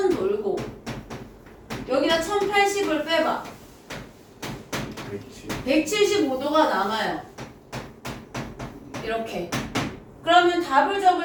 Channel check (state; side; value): identical; both; correlation 1.00